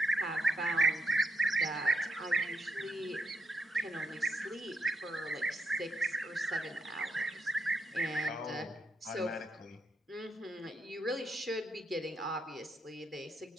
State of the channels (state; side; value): normal; both; correlation 0.80